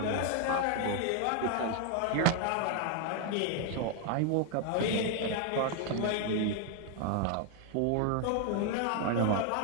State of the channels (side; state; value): both; different; correlation 0.00